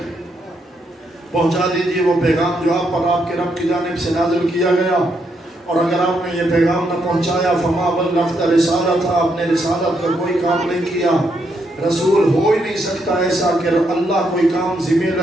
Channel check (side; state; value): both; normal; correlation 0.78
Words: پہنچا دیجئے وہ پیغام جو آپ پر آپ کے رب کی جانب سے نازل کیا گیا، اور اگر آپ نے یہ پیغام نہ پہنچایا فما بلغت رسالت، آپ نے رسالت کا کوئی کام نہیں کیا۔ رسول ہو ہی نہیں سکتا ایسا کہ اللہ کوئی کام ذمہ